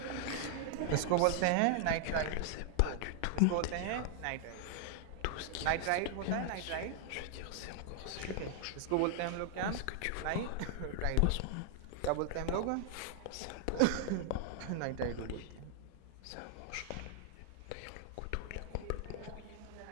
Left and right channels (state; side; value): different; both; correlation 0.00